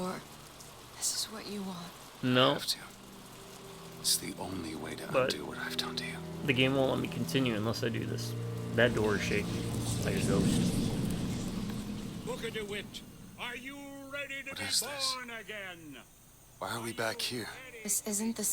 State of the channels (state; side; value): identical; both; correlation 1.00